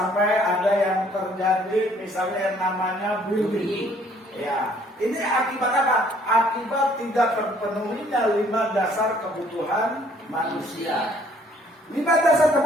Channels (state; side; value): normal; both; correlation 0.61